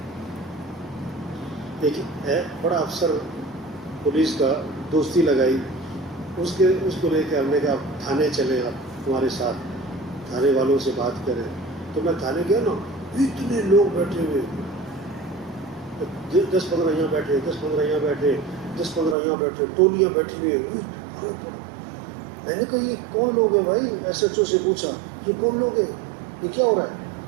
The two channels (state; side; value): drops out; left; at 19.2 s